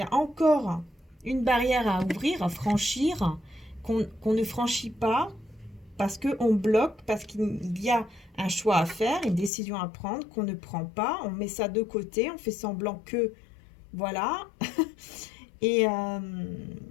a encore une barrière à ouvrir, à franchir, qu'on ne franchit pas parce qu'on bloque, parce qu'il y a un choix à faire, une décision à prendre qu'on ne prend pas, on met ça de côté, on fait semblant que, voilà, et, euh,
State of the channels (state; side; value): drops out; right; at 9.5 s